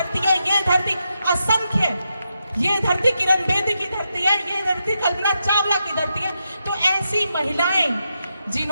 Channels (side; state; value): both; inverted; correlation -0.85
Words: है, ये धरती असंख्य, ये धरती किरण बेदी की धरती है, ये धरती कल्पना चावला की धरती है। तो ऐसी महिलाएं